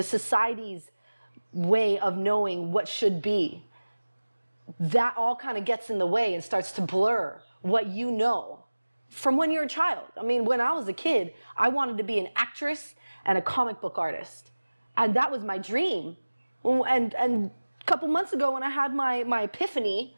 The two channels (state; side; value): inverted; both; correlation -1.00